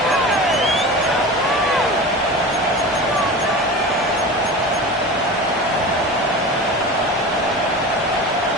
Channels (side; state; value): both; normal; correlation 0.31